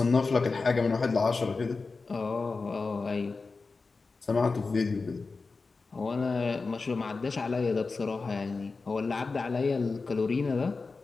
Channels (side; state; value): right; quieter; 4.1 dB